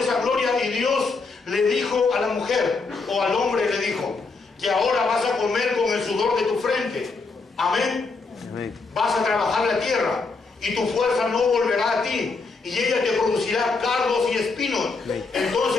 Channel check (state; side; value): quieter; right; 4.1 dB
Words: esa gloria y Dios le dijo a la mujer, o al hombre le dijo, que ahora vas a comer con el sudor de tu frente. Amén. Amén. Vas a trabajar la tierra y tu fuerza no volverá a ti y ella te producirá cardos y espinos.